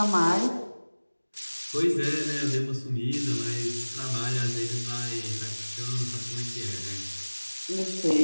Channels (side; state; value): both; inverted; correlation -1.00